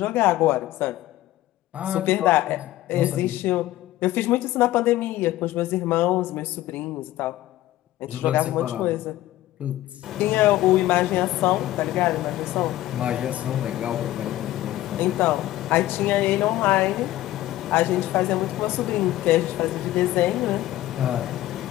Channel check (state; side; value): quieter; right; 15.2 dB